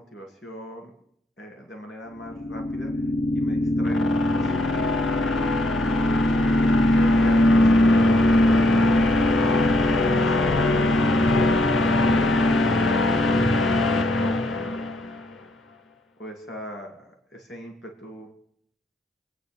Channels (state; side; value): normal; both; correlation 0.74